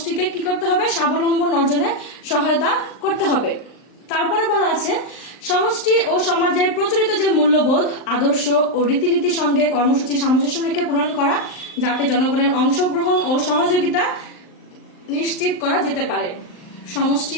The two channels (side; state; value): right; late; 39 ms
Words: কি করতে হবে? স্বাবলম্বন অর্জনে সহায়তা করতে হবে। তারপরে বলা আছে সমষ্টি ও সমাজের প্রচলিত যে মূল্যবোধ আদর্শ ও রীতিনীতির সঙ্গে কর্মসূচি সামঞ্জস্য রেখে প্রণয়ন করা, যাতে জনগণের অংশগ্রহণ ও সহযোগিতা নিশ্চিত করা যেতে পারে। সমষ্টি